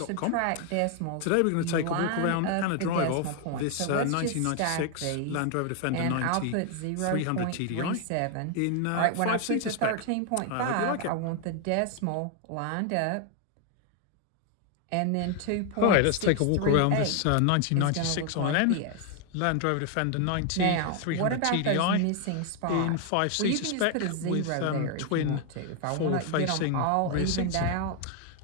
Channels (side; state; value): both; different; correlation 0.00